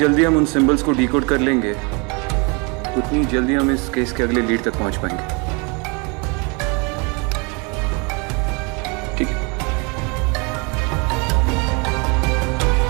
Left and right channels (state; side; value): quieter; left; 31.2 dB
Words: हम उन सिंबल्स को डिकोड कर लेंगे उतनी जल्दी हम इस केस के अगले लीड तक पहुंच पाएंगे। ठीक है।